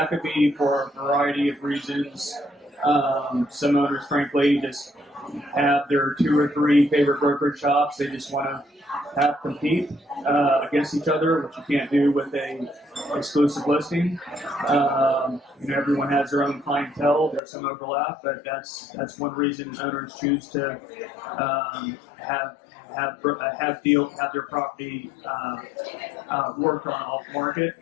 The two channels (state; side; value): drops out; right; at 17.4 s